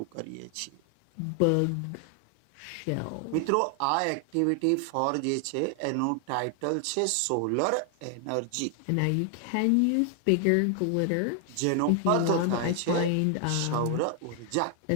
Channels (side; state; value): both; different; correlation 0.00